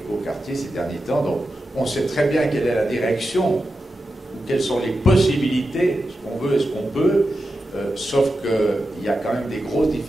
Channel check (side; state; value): both; normal; correlation 0.90